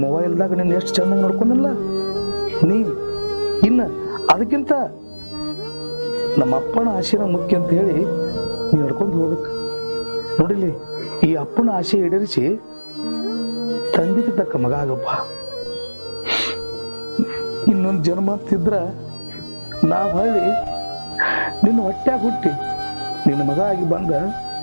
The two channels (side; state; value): both; inverted; correlation -1.00